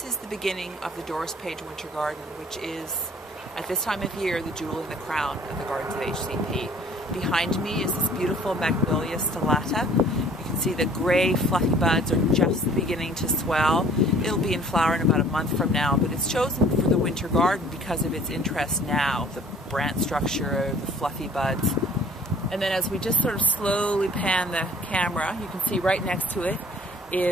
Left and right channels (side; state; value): both; normal; correlation 0.53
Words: is the beginning of the Doris Page Winter Garden, which is, at this time of year, the jewel in the crown of the gardens of HCP. Behind me is this beautiful Magnolia stellata. You can see the gray fluffy buds are just beginning to swell. It'll be in flower in about a month from now, but it's chosen for the winter garden because of its interest now, the branch structure, the fluffy buds. And then as we just sort of slowly pan the camera, you can see right next to it